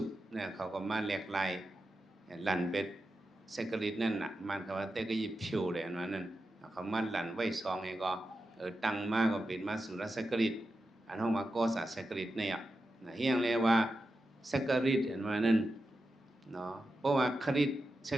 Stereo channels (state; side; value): normal; both; correlation 0.90